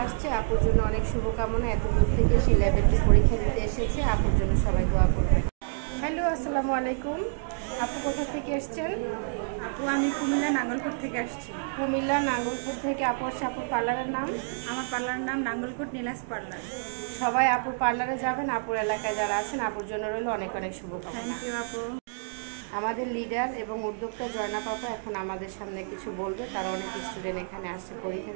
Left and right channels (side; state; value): left; silent; digital silence